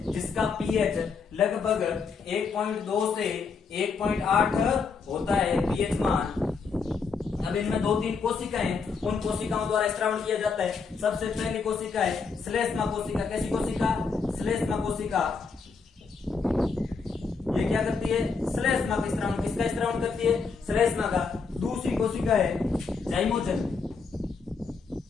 जिसका पीएच लगभग 1.2 से 1.8 होता है पीएच मान। अब इनमें 2-3 कोशिकाएं, उन कोशिकाओं द्वारा स्रावण किया जाता है। सबसे पहली कोशिका है श्लेष्मा कोशिका। कैसी कोशिका? श्लेष्मा कोशिका। ये क्या करती है? श्लेष्मा का स्रावण। किसका स्रावण करती है? श्लेष्मा का। दूसरी कोशिका है जाइमोजन।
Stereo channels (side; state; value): right; quieter; 5.0 dB